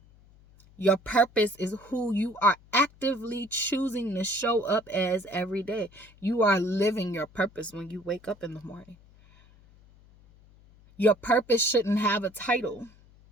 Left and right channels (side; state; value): left; noise; hum, 27 dB below the sound